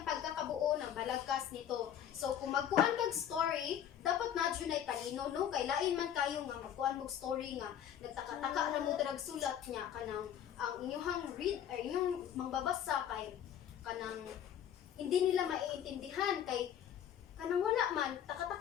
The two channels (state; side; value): quieter; right; 9.8 dB